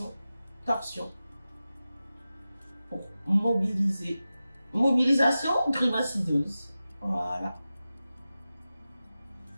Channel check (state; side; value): inverted; both; correlation -0.94